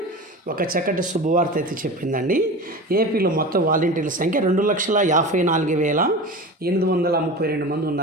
ఒక చక్కటి శుభవార్త అయితే చెప్పిందండి. ఏపీలో మొత్తం వాలంటీర్ల సంఖ్య 2,54,832 మంది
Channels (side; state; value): both; normal; correlation 0.31